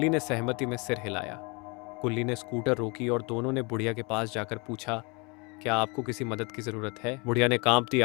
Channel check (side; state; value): right; quieter; 29.9 dB